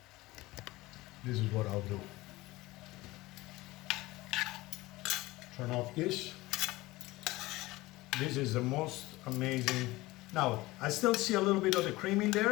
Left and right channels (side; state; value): right; quieter; 19.7 dB